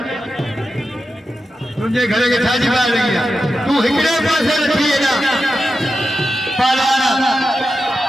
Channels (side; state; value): both; normal; correlation 0.90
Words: तुझे घरे के छाजी बाहर लगी तू हिकड़े पासे रखी है ना पालवाना